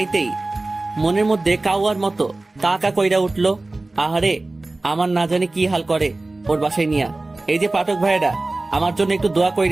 মনের মধ্যে কাউয়ার মতো কা কা কইরা উঠলো। আহারে, আমার না জানি কি হাল করে ওর বাসায় নিয়া। এই যে পাঠক ভাইয়েরা, আমার জন্য একটু দোয়া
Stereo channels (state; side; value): quieter; left; 3.0 dB